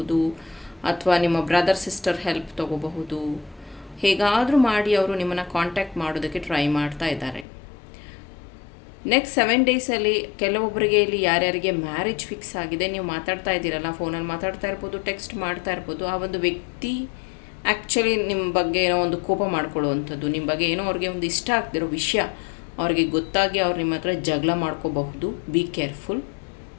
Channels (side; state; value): right; drops out; at 7.5 s